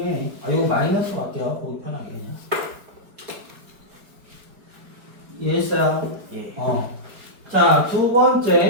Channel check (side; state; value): left; late; 4.8 ms